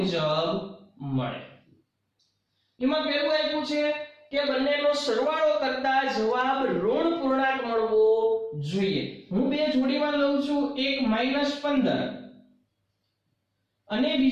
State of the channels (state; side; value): identical; both; correlation 1.00